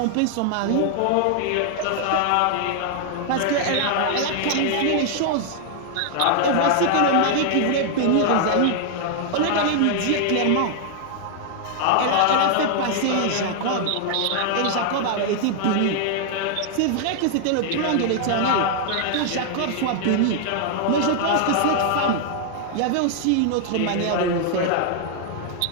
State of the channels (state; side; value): different; both; correlation 0.00